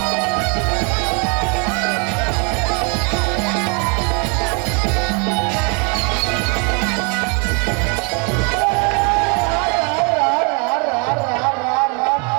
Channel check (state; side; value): quieter; left; 35.3 dB